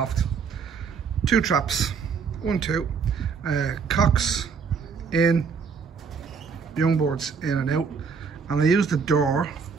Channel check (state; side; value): quieter; left; 5.7 dB